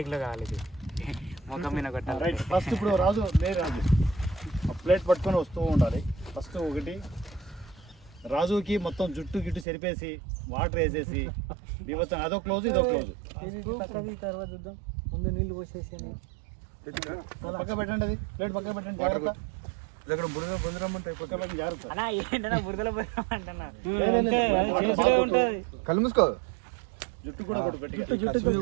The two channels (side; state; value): left; drops out; at 9.7 s